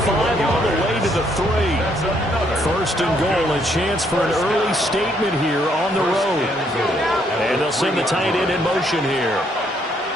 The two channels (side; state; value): both; normal; correlation 0.70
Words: 5 all the way to the 3. 1st and goal, a chance for an early statement here on the road. And they'll send the tight end in motion here.